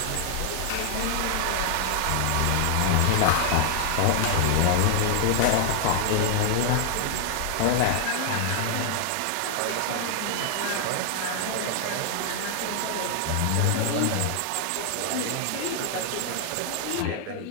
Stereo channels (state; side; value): different; both; correlation 0.00